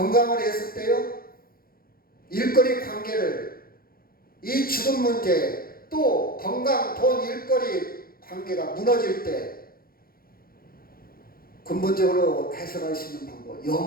해석돼요? 일거리 관계를, 이 죽음 문제, 또 건강, 돈, 일거리 관계가 무너질 때 근본적으로 해석할 수 있는 방법,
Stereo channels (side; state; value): right; late; 0.43 ms